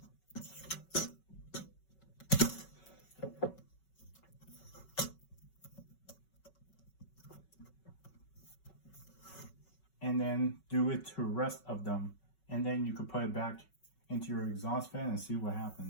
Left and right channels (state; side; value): late; right; 5.3 ms